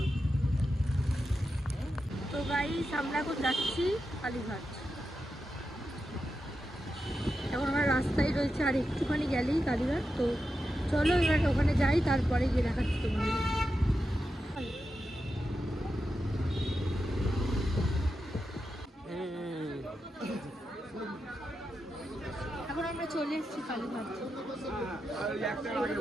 তো গাইস আমরা এখন যাচ্ছি কালীঘাট, এখন আমরা রাস্তায় রয়েছে, আর একটুখানি গেলেই কালীঘাট। তো চলো এবার ওখানে যাই, তারপরে গিয়ে দেখাচ্ছি তোমাদের। এখন আমরা চলে এসেছি কালীঘাট।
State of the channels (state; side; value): normal; both; correlation 0.89